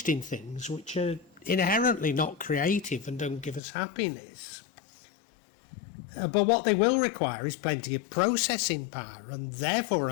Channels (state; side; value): drops out; right; at 3.6 s